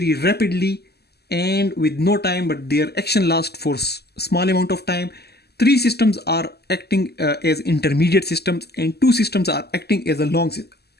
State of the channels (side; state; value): right; late; 0.47 ms